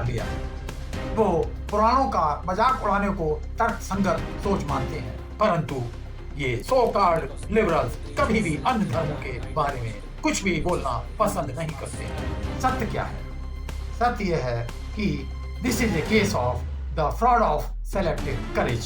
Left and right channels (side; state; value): both; identical; correlation 1.00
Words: लिया है। वो पुराणों का मजाक उड़ाने को तर्कसंगत सोच मानते हैं, परंतु ये सो कॉल्ड लिबरल्स कभी भी अन्य धर्मों के बारे में कुछ भी बोलना पसंद नहीं करते। सत्य क्या है? सत्य यह है कि this is a case of the fraud of selective